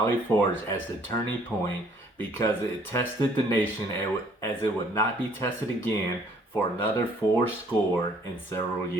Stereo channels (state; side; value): normal; both; correlation 0.60